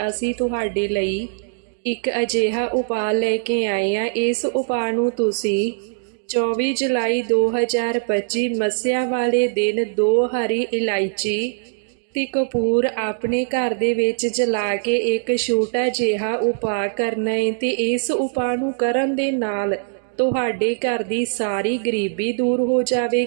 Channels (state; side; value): silent; left; digital silence